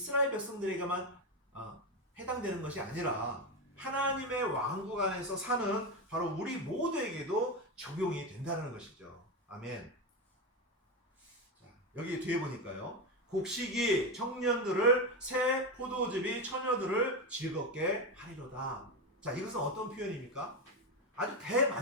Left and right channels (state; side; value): normal; both; correlation 0.14